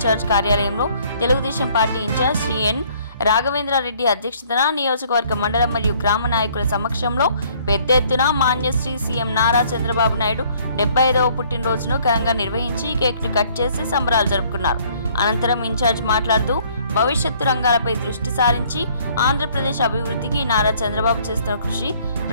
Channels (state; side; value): inverted; both; correlation -0.60